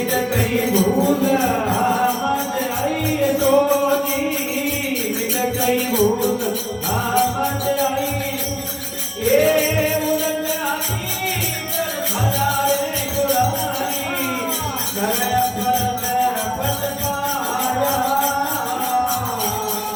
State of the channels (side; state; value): both; identical; correlation 1.00